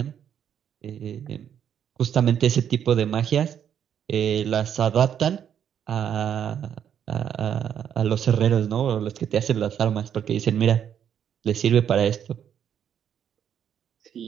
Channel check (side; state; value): left; quieter; 8.9 dB